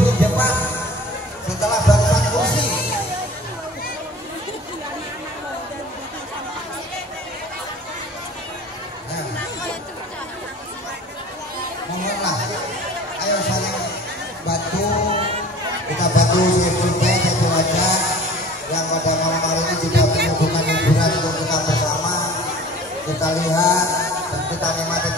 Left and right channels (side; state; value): both; normal; correlation 0.44